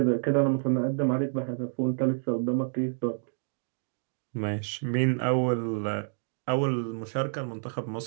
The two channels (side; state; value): left; silent; digital silence